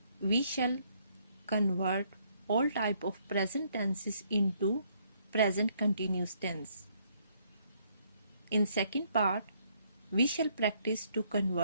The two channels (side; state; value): both; inverted; correlation -0.69